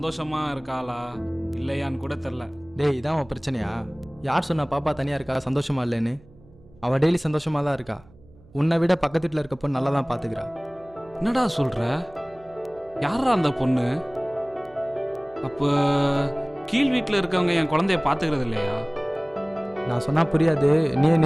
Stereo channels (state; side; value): noise; right; hum, 26 dB below the sound